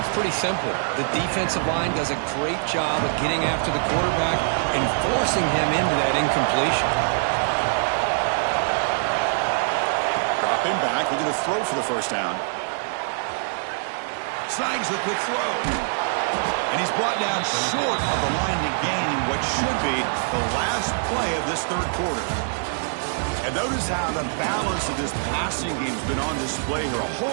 pretty simple. The defensive line does a great job of getting after the quarterback and forcing him into that incompletion. Drop him back, looking to throw for the first down. Snags the quick throw. And he's brought down short of the line to gain in what should be the last play of this 3rd quarter. And notice how the balance of this passing game has been on display here. A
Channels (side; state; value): left; silent; digital silence